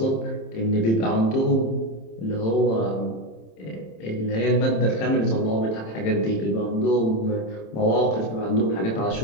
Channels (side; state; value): right; late; 27 ms